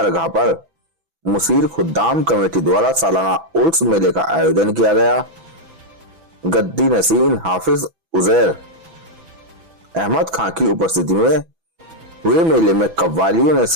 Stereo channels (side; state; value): left; late; 6.1 ms